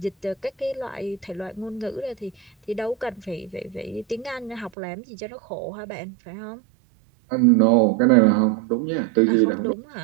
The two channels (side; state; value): left; drops out; at 4.7 s